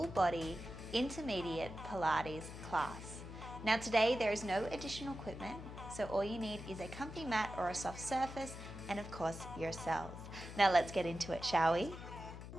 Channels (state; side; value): noise; left; hum, 11 dB below the sound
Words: body intermediate Pilates class. Now today there is no additional equipment, so all you need is a comfy mat or a soft surface and of course yourselves. Now let's get into it, shall we?